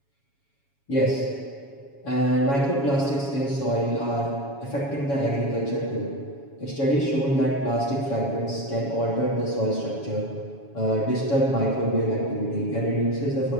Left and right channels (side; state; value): right; late; 7.2 ms